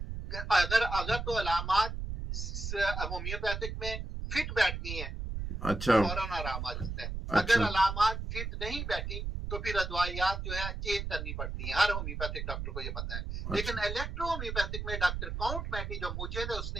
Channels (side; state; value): right; noise; rumble, 5 dB below the sound